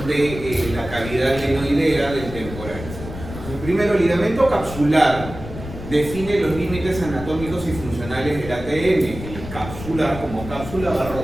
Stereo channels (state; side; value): noise; left; rumble, 10 dB below the sound